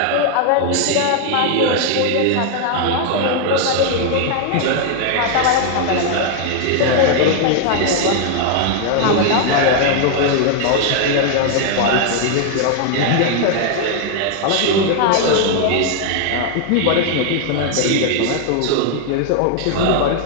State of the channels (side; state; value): both; different; correlation 0.00